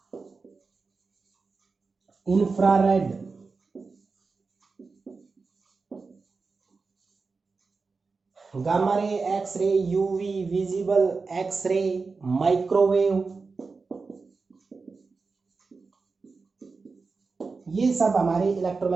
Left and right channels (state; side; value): quieter; left; 4.4 dB